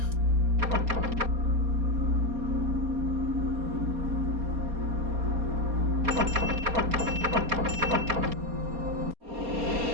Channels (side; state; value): left; late; 4.2 ms